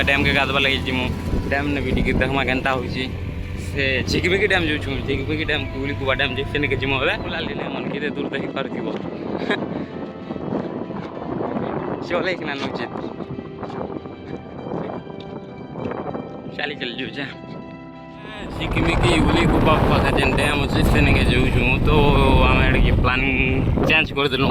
डैम के गाधवा लगे जिमु डैम ने भी देखा केन्ता हो चिकबिकी डैम जो चिकबिकी डैम कुबा डैम से नहीं जिमु बुलाली मन कि दूर देखी पार चले कि नौचे चली चल जो चिकमिकी उली गुबा पाखे जेन डैम अच्छे से नहीं जाऊँ तो आम प्लानिंग चेंज करदेलु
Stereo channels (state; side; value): identical; both; correlation 1.00